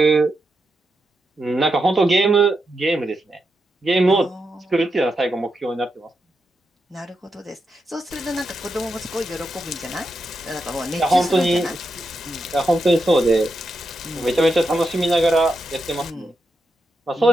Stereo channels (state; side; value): normal; both; correlation 0.86